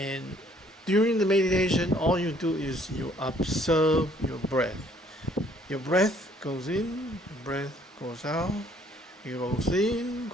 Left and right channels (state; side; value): normal; both; correlation 0.62